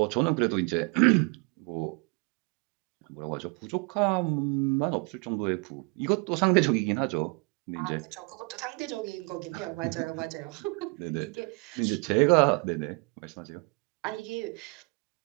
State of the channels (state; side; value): quieter; left; 31.4 dB